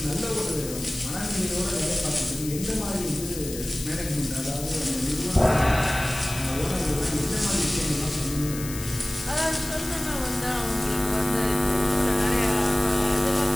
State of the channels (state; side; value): noise; left; hiss, 10 dB below the sound